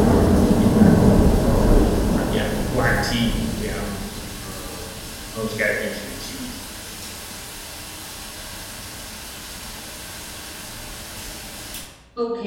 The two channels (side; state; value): both; identical; correlation 1.00